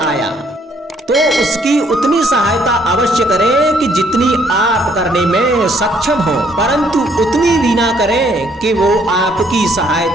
तो उसकी उतनी सहायता अवश्य करें कि जितनी आप करने में सक्षम हो, परंतु उतनी भी ना करें कि वो आपकी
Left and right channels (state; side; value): normal; both; correlation 0.66